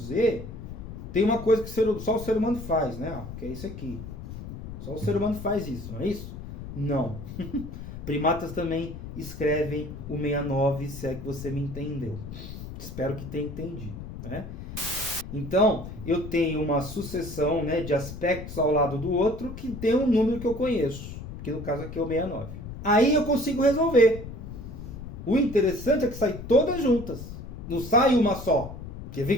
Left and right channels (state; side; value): noise; left; rumble, 10 dB below the sound